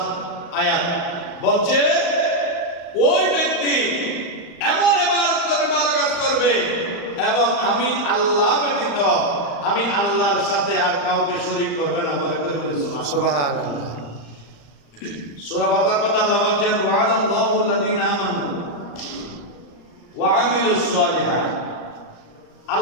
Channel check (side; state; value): right; late; 35 ms